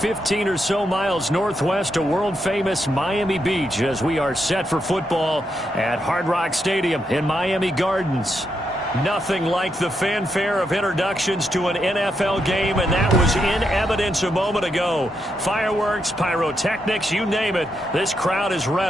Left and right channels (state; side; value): normal; both; correlation 0.82